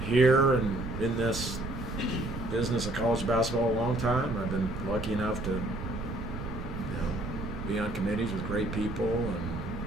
here and in this business of college basketball a long time. I've been lucky enough to, be on committees with great people and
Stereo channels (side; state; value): right; noise; rumble, 8 dB below the sound